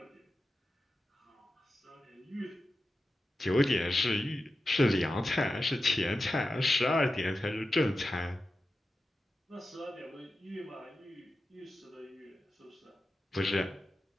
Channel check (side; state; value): both; normal; correlation 0.92